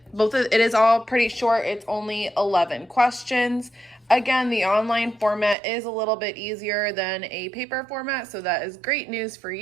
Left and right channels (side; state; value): left; drops out; at 5.6 s